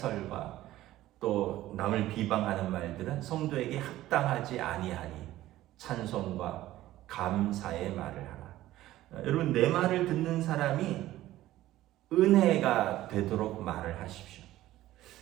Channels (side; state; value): left; quieter; 15.1 dB